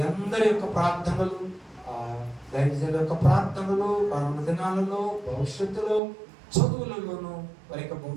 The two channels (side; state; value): left; drops out; at 6.0 s